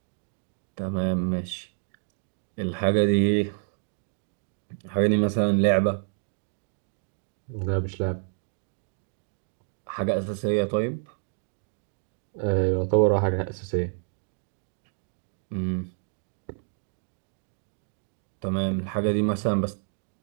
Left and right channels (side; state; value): left; silent; 59 dB below the other